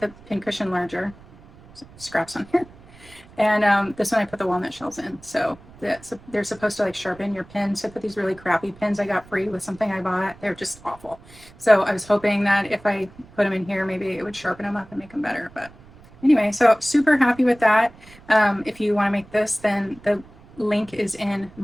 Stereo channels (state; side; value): noise; right; rumble, 23 dB below the sound